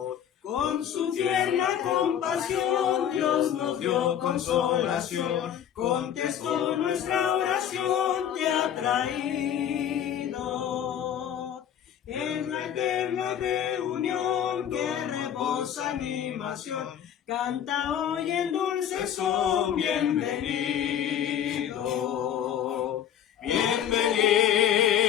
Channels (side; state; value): right; quieter; 9.6 dB